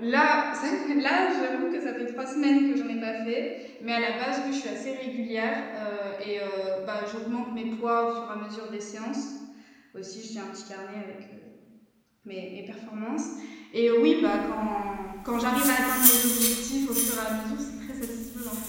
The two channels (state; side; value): identical; both; correlation 1.00